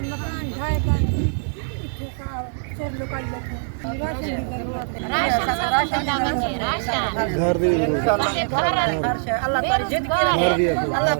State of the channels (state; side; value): silent; left; digital silence